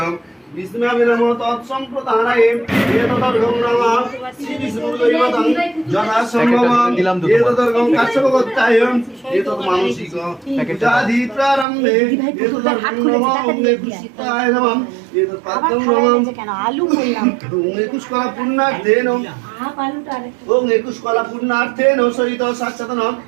বিষ্ণুবে নমঃ তৎসম্প্রদানায়ে এতদর্গং নমঃ শ্রী বিষ্ণুদৈবতং যথা সম্ভবং এতদর্গং কাশ্যপগোত্তায়ং এতদ মানসিক পূজাধি প্রারম্ভে এতদর্গং নমঃ ওম নেকুশিতায় নমঃ এতদ পাদ্যং নমঃ আলু বললাম ওম নেকুশকলা পুণ্যার্থেন ওম নেকুশকলা পুণ্যার্থেন সহিত সাক্ষাৎ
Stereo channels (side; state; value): left; drops out; at 11.7 s